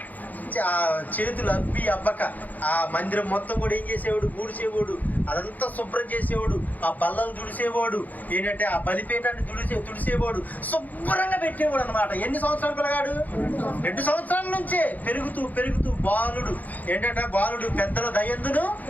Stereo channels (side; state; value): right; late; 0.081 ms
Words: చేతులు అబ్బి అబ్బక ఆ మందిరం మొత్తం కూడా ఏం చేసేవాడు, ఊడ్చేవాడు, అదంతా శుభ్రం చేసేవాడు, ఆ బల్లలు తుడిసేవాడు, ఏంటంటే ఆ బలిపేటాన్ని తుడిసేవాడు, శుభ్రంగా పెట్టేవాడు అనమాట. ఎన్ని సంవత్సరాలు పిల్లగాడు? 2 సంవత్సరాల నుంచే పెరుగుతూ బాలుడు ఏంటంటే బాలుడు పెద్దల దయందును